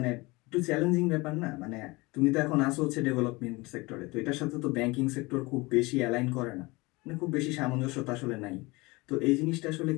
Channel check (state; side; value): quieter; right; 23.6 dB